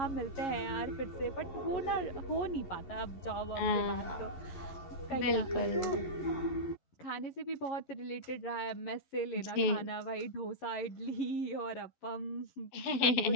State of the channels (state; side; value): late; right; 12 ms